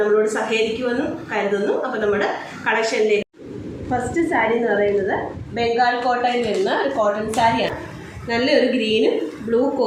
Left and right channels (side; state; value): both; identical; correlation 1.00